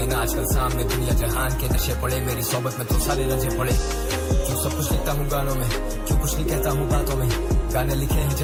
आजकल सामने दुनिया जहान के नशे पड़े, मेरी सोबत में तो सारे रजे पड़े। क्यों सब कुछ लिखता हूँ गानों में, क्यों कुछ नहीं कहता हूँ बातों में, गाने लिखे हैं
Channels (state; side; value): identical; both; correlation 1.00